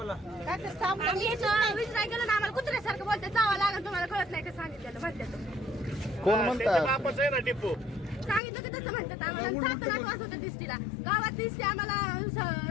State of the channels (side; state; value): right; drops out; at 8.4 s